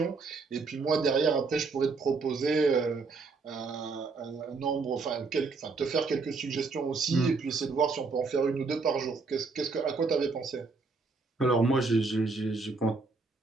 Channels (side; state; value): left; quieter; 4.3 dB